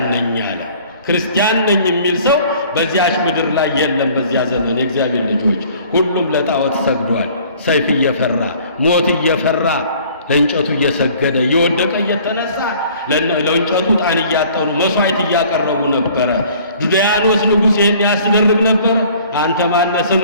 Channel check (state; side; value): inverted; both; correlation -0.53